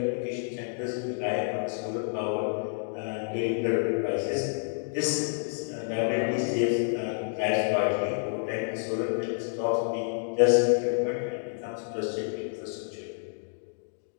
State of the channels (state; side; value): silent; right; digital silence